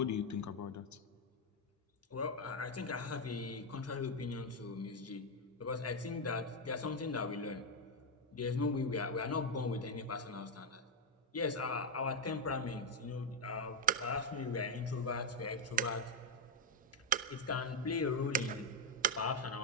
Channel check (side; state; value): both; normal; correlation 0.02